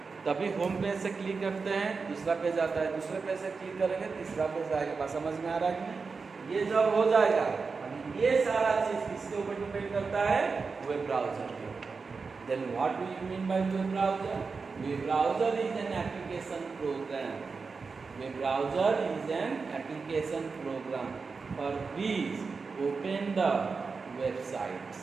तभी होम पेज से क्लिक करते हैं, दूसरा पेज आता है. दूसरे पेज से क्लिक करेंगे, तीसरा पेज आएगा. बात समझ में आ रहा है कि ये जब हो जाएगा, ये सारा चीज किसके ऊपर डिपेंड करता है? वेब ब्राउजर के ऊपर. Then what do you mean by web browser? Web browser is an application program. Web browser is an application program for which open the websites.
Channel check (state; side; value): quieter; left; 4.7 dB